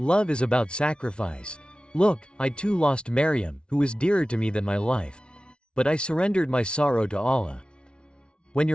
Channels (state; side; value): late; right; 0.056 ms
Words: is about sacrifice. Look, I too lost Maryam, who was dearer to me than my life. But I surrendered my sorrow to Allah. When